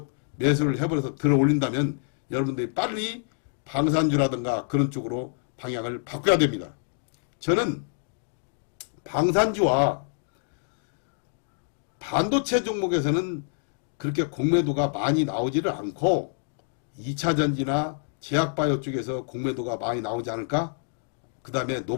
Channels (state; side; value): silent; right; digital silence